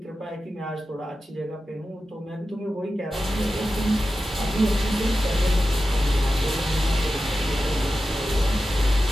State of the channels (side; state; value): both; normal; correlation 0.93